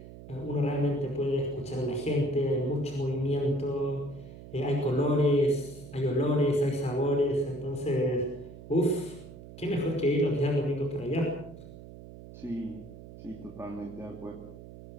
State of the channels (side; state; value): right; noise; hum, 15 dB below the sound